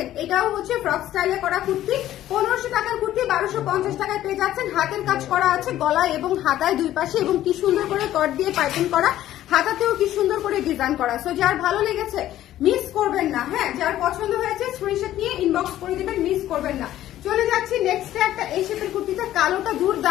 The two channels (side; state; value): right; quieter; 13.2 dB